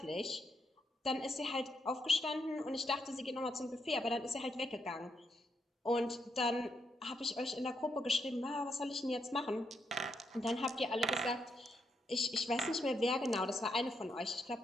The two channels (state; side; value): normal; both; correlation 0.79